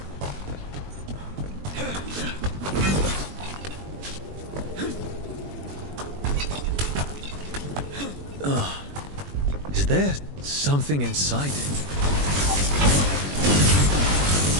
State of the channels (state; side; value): late; left; 21 ms